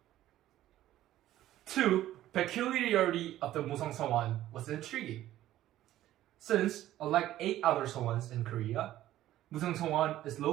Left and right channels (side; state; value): left; quieter; 13.7 dB